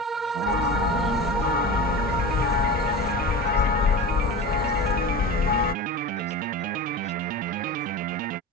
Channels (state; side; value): normal; both; correlation 0.30